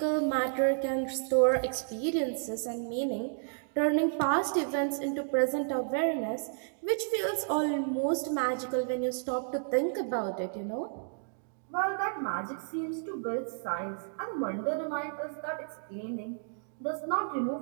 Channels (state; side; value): silent; left; digital silence